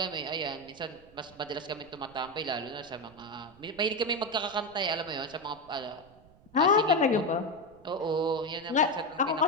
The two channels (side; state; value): right; noise; rumble, 25 dB below the sound